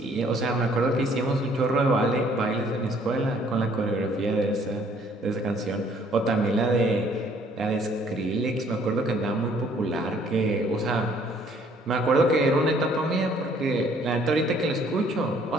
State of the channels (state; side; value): normal; both; correlation 0.61